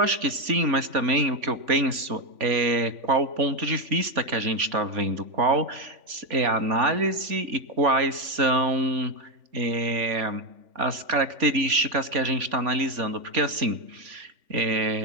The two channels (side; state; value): left; late; 3.5 ms